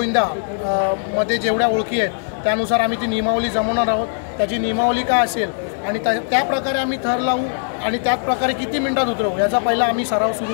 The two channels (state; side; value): silent; right; 61 dB below the other